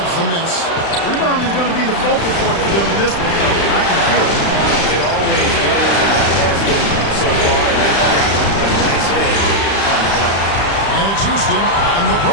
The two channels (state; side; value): late; right; 35 ms